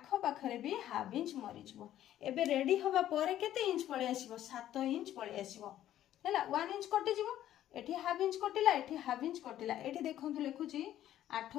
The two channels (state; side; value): quieter; right; 12.3 dB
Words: पाखरे भी हाफ इंच मरि जिवो एबे रेडी होबा परे केते इंच पळे आसीबो 7 इंच पळे आसीबो हैला 1 इंच कटि जिवो एठी हाफ इंच कटिला एठी हाफ इंच कटिला एठी देखंतु लेखुची 8